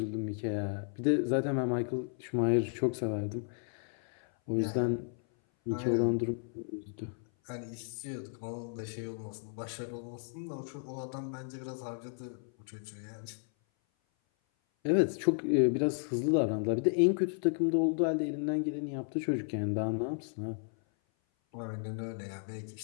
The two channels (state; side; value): silent; right; 55 dB below the other